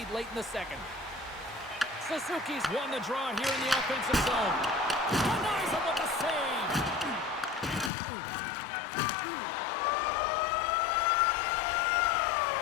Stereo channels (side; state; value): right; drops out; at 7.9 s